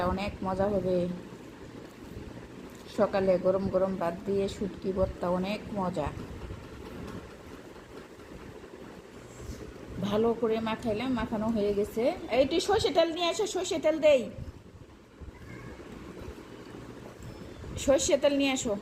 অনেক মজা হবে। সকালে গরম গরম ভাত দিয়ে শুটকি ভর্তা অনেক মজা। ভালো করে মাখাইলাম, মাখানো হয়ে গেছে। এইটি সর্ষে তেল নিয়ে আসো, সর্ষে তেল দেই, সর্ষে তেল নিয়ে আসো,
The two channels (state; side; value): identical; both; correlation 1.00